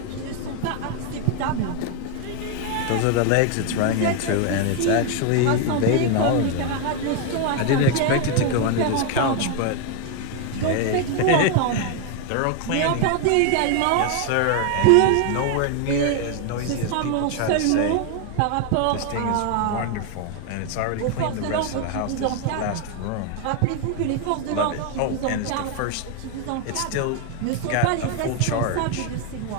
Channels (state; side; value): different; both; correlation 0.01